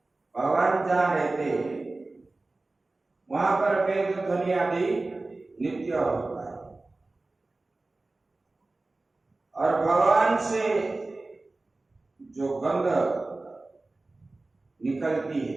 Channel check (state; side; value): quieter; left; 3.2 dB